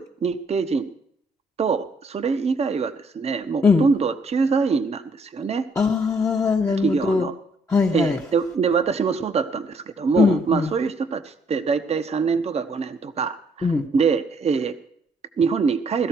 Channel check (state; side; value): normal; both; correlation 0.67